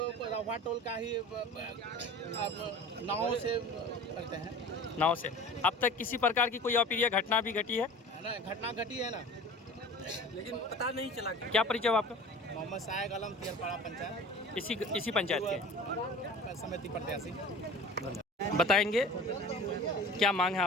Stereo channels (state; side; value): normal; both; correlation 0.40